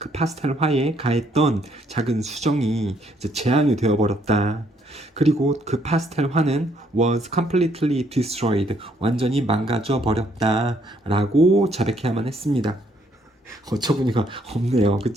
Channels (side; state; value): both; normal; correlation 0.69